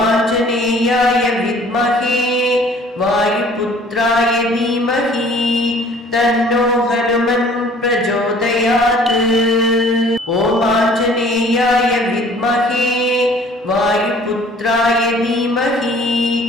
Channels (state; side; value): normal; both; correlation 0.53